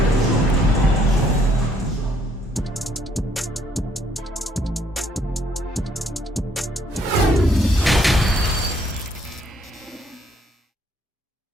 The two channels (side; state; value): both; normal; correlation 0.67